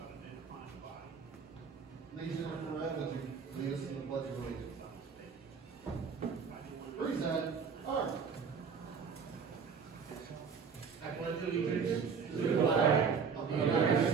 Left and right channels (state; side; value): quieter; left; 6.0 dB